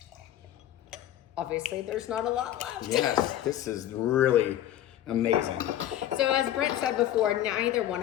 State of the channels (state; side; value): quieter; right; 12.3 dB